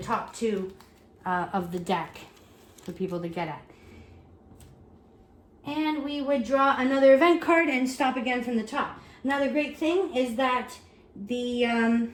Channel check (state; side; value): identical; both; correlation 1.00